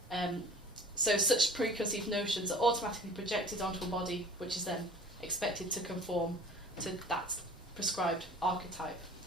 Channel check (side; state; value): both; normal; correlation 0.45